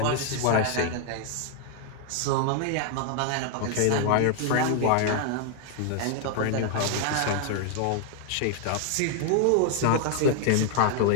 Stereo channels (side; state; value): both; different; correlation 0.00